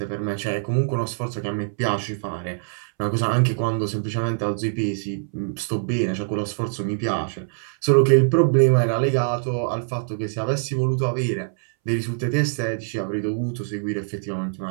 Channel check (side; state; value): left; silent; 63 dB below the other